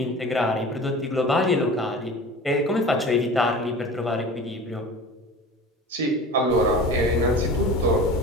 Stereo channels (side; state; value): both; normal; correlation 0.37